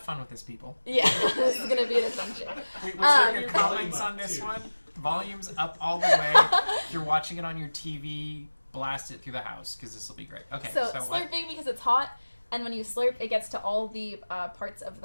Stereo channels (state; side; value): inverted; both; correlation -1.00